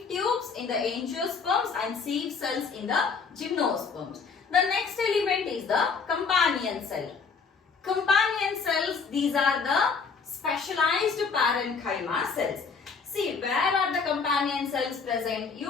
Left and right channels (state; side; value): quieter; right; 5.3 dB